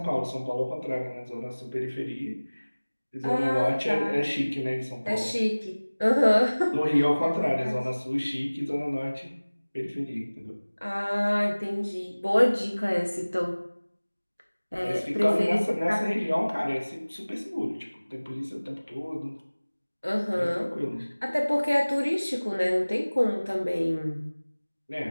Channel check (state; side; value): inverted; both; correlation -1.00